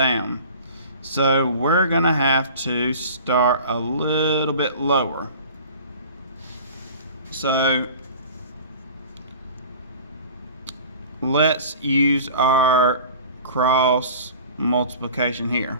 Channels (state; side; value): inverted; both; correlation -0.42